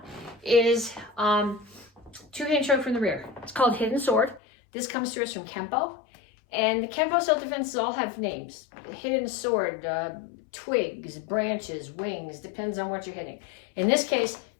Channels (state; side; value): drops out; right; at 4.4 s